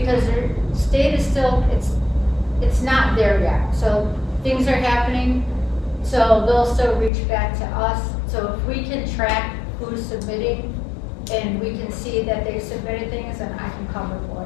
their state is still, it's not there yet. So things are happening, so they'll still reach back to us. So if we can track who's submitting and we can see that they submitted things, then I can cover for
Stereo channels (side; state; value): right; drops out; at 7.1 s